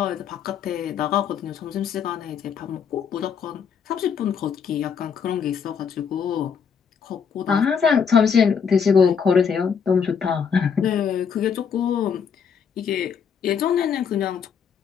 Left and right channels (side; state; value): right; quieter; 6.8 dB